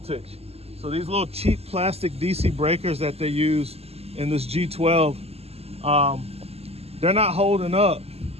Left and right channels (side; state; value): left; late; 0.29 ms